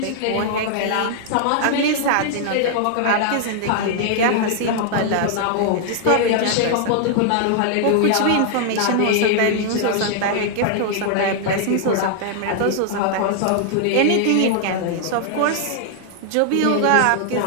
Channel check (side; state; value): both; different; correlation 0.00